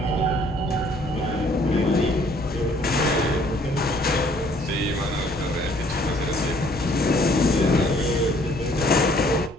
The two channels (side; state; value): both; normal; correlation 0.61